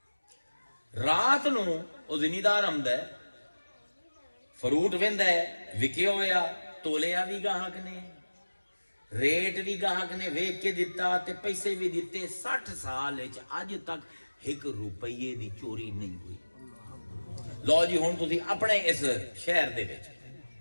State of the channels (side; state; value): both; inverted; correlation -1.00